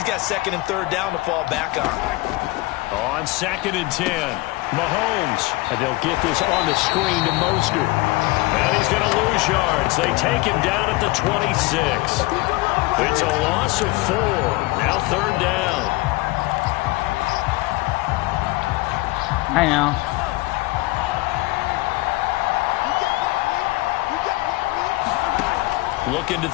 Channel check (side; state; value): right; quieter; 21.4 dB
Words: got second and third down to fall back on. On 2nd and 10, Mahomes. And they'll get this on the screen to Mostert. And he's going to lose yards. They take him down at the 26. It's a loss of 4. Now 3rd down. I know. Looking to